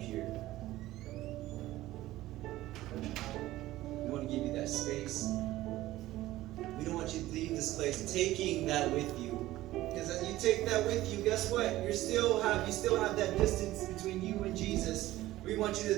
We want to give you that space. We don't want you to leave this place taking that with you. Because as you take that with you, guess what? You still have that distance between you and Jesus. We want you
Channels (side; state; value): left; quieter; 16.1 dB